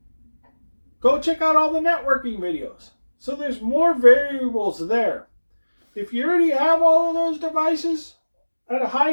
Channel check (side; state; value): both; inverted; correlation -1.00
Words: Go check out all the networking videos. So there's more variables there. If you already have all of those devices at a